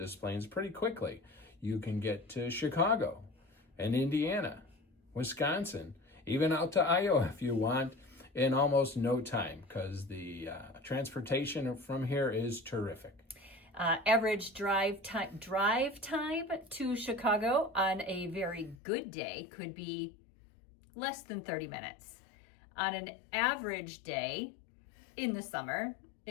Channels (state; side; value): drops out; right; at 18.8 s